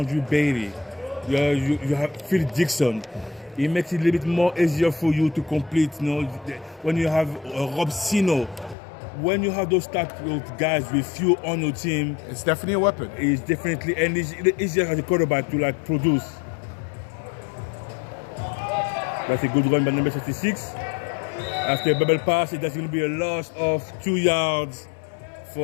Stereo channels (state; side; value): drops out; right; at 8.8 s